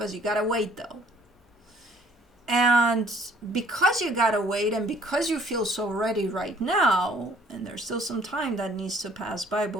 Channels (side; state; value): both; normal; correlation 0.59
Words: as you got to wait, though. And because you got to wait, and because you feel so ready right now, and there's still some time that needs to pass by